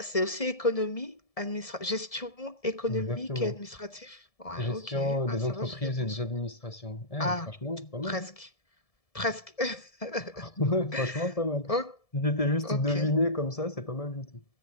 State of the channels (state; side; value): late; right; 1.7 ms